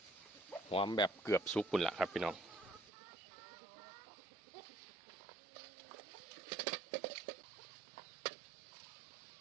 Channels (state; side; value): drops out; left; at 2.9 s